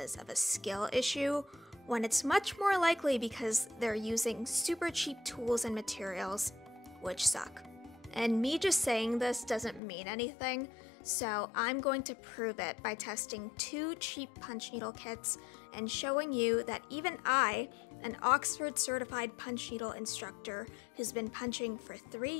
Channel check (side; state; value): right; drops out; at 9.8 s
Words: of a skill issue, when it's much more likely because they're using super cheap tools and materials, which suck. And me just saying this doesn't mean anything, so I'm going to prove it by testing 2 cheap punch needle kits and showing you that even I, an Oxford certified punch needle instructor who's been punching for 3